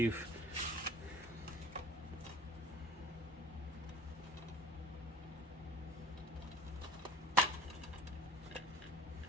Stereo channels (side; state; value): both; normal; correlation 0.46